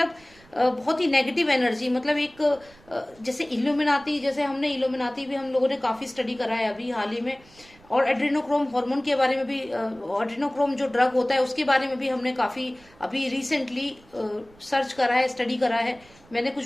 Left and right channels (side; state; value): right; noise; rumble, 27 dB below the sound